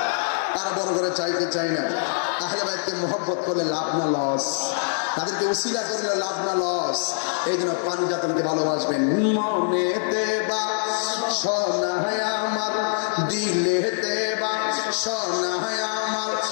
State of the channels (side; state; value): right; silent; 63 dB below the other